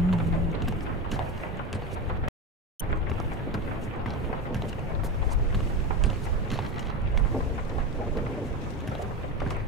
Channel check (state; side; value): normal; both; correlation 0.22